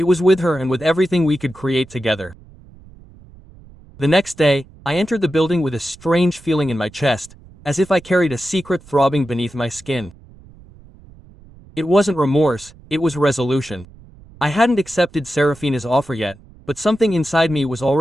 was with her and with everything we could create together. The next day, I entered the building with a strange feeling in my chest, as if I carried a secret throbbing beneath my skin. It wasn't remorse, it was resolution. I hadn't accepted Serafina's offer yet, but something inside me was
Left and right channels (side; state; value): right; noise; rumble, 23 dB below the sound